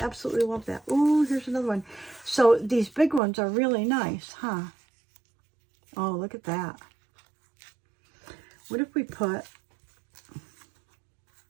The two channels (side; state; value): left; drops out; at 3.2 s